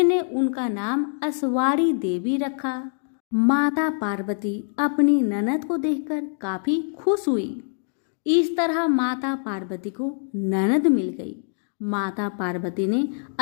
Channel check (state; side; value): silent; right; digital silence